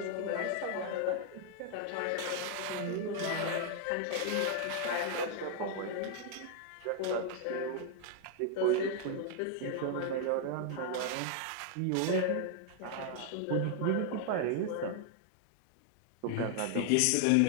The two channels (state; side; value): different; both; correlation 0.00